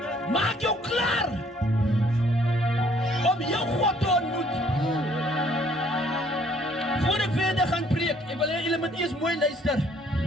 Maak jou klaar om jou God te ontmoet. Voor ek verder gaan preek, ek wil hê julle moet eers mooi luister.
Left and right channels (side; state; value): both; normal; correlation 0.62